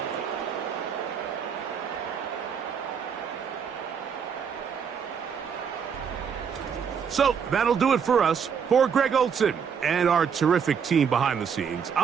So that'll do it for us. For Greg Olsen and our terrific team behind the scenes,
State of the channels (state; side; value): quieter; left; 7.0 dB